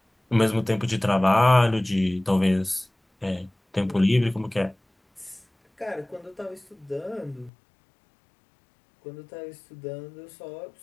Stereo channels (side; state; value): right; drops out; at 7.5 s